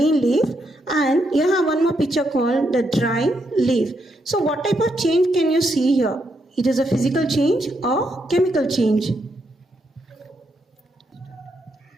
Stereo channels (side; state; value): both; normal; correlation 0.79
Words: and you have one more picture called the dry leaf. So what type of change can you see here? It is a physical change or chemical change?